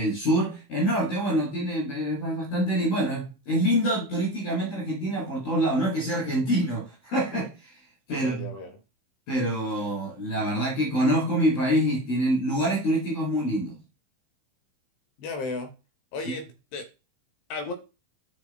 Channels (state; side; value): late; right; 15 ms